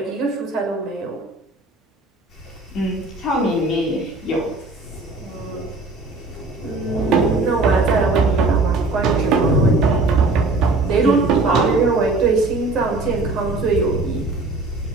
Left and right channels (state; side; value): quieter; left; 3.2 dB